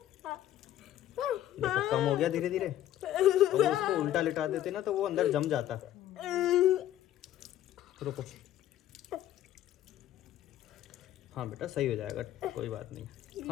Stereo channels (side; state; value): right; quieter; 12.6 dB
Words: देखो कम हो गया धीरे धीरे। अगर इसको उल्टा लिटा देते ना तो वो अंदर जम जाता। रुको, हाँ बेटा सही हो जाएगा, कोई बात नहीं।